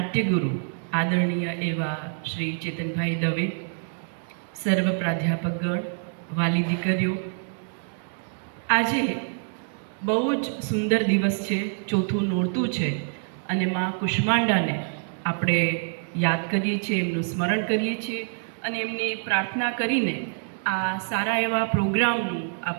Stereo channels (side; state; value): left; silent; 61 dB below the other